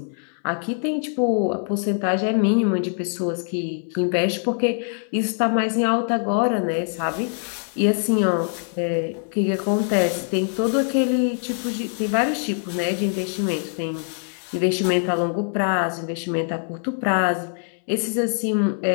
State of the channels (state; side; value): silent; right; 59 dB below the other